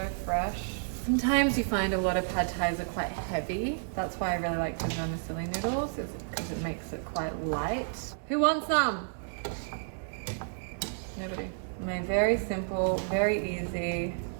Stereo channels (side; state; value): left; silent; digital silence